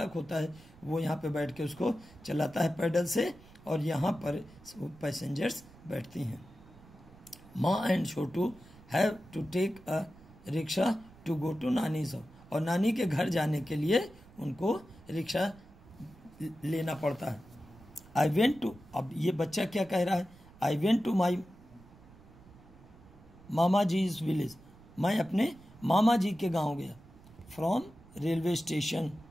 होता है, वो यहाँ पे बैठ के उसको चलाता है पैडल से, और यहाँ पर पैसेंजर्स बैठती हैं। Maa and Chhotu have to take a rickshaw to go to nani's house, और नानी के घर जाने के लिए उनको रिक्शा लेना पड़ता है। आई वेंट टू, अब ये बच्चा क्या कह रहा है? I went to my mama ji's village, मैं अपने मामा जी के गांव गया। फ्रॉम रेलवे स्टेशन,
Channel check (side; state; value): right; noise; rumble, 23 dB below the sound